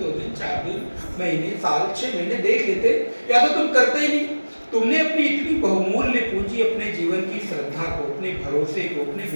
2 दिन 4 दिन महीने साल 6 महीने देख लेते, या तो तुम करते ही नहीं। तुमने अपनी इतनी बहुमूल्य पूंजी, अपने जीवन की श्रद्धा को, अपने भरोसे को, अपने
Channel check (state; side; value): inverted; both; correlation -1.00